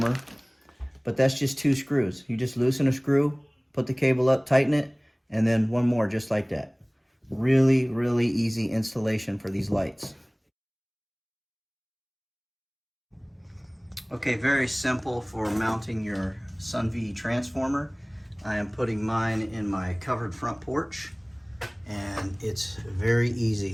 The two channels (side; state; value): both; identical; correlation 1.00